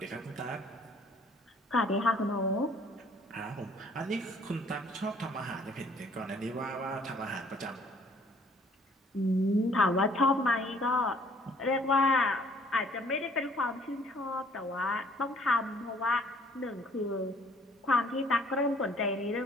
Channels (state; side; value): normal; both; correlation 0.58